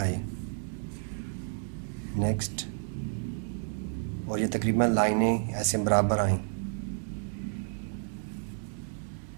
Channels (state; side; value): silent; left; digital silence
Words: नेक्स्ट, और ये तकरीबन लाइनें ऐसे बराबर आएँ।